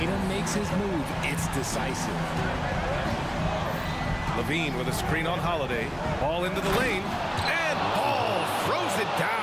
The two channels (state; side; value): identical; both; correlation 1.00